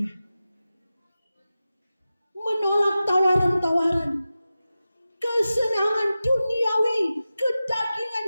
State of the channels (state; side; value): inverted; both; correlation -0.94